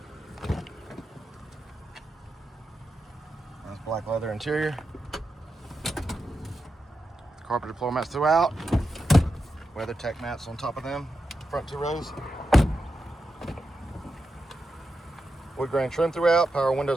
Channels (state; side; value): normal; both; correlation 0.88